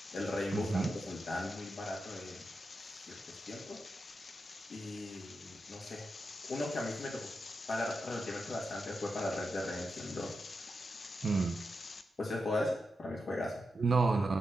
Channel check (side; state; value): both; normal; correlation 0.87